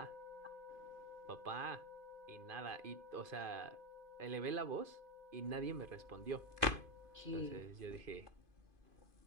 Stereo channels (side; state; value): left; late; 2.5 ms